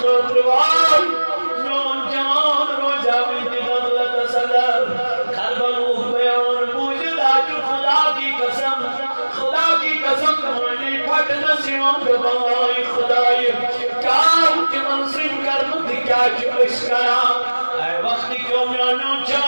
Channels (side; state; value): both; inverted; correlation -1.00